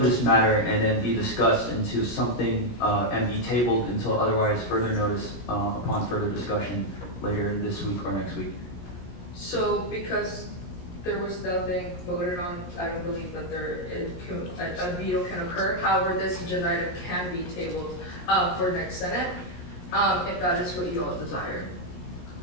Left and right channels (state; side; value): late; right; 17 ms